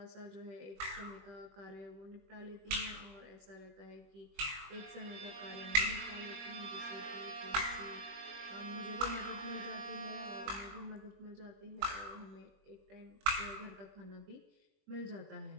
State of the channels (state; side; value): late; left; 21 ms